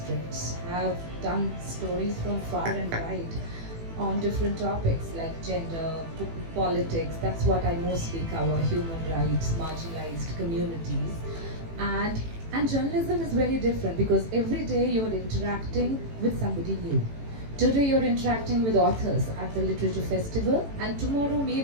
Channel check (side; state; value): left; late; 18 ms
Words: I've done stories from far and wide on different topics like gender, politics. That's what I mostly cover, human rights, marginalized communities. And journalism is very different because every day you're interacting with somebody new. Today you're interacting with authors at the literature festival, and tomorrow